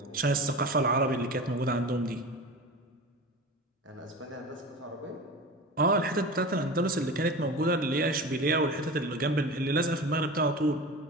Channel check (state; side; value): normal; both; correlation 0.32